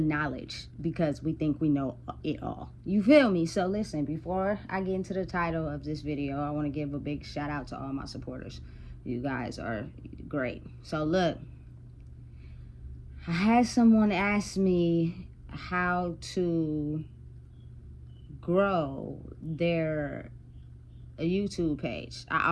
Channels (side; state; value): both; identical; correlation 1.00